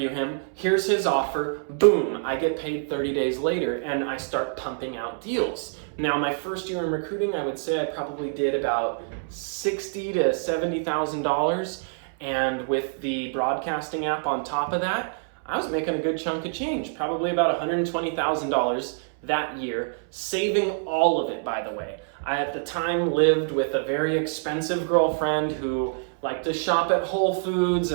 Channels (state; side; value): silent; left; 61 dB below the other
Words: him, here's his offer, boom, I get paid 30 days later, and I start pumping out deals. Now, my first year in recruiting, I would say I probably did about $60,000 to $70,000, and with the broadcasting app on top of that, I was making a good chunk of change, probably about $120,000 that year, saving all of it, by the way. I, at the time, lived with a very expensive girlfriend who liked to shop at Whole Foods